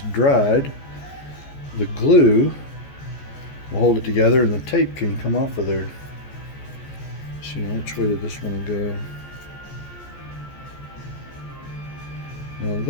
dried, the glue will hold it together and the tape can come off of there. See, which way did this one go? Now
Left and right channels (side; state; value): right; late; 14 ms